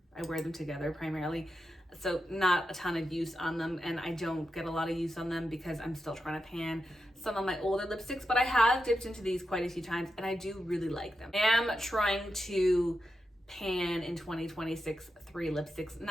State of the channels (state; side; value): normal; both; correlation 0.89